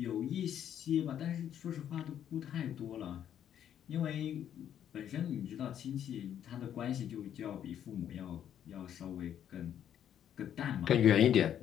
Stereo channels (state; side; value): quieter; right; 9.9 dB